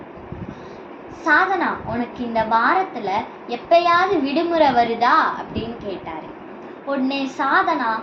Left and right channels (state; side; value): identical; both; correlation 1.00